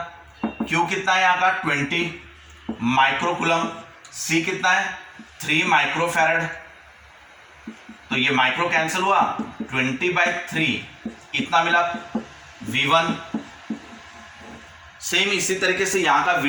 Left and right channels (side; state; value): both; identical; correlation 1.00